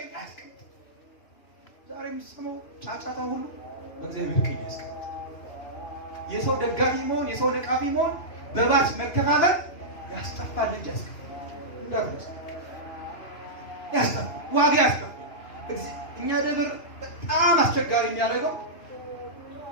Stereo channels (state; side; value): late; right; 2.9 ms